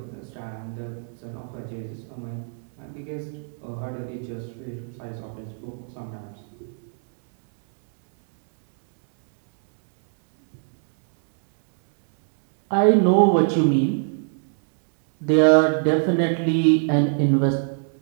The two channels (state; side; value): silent; left; digital silence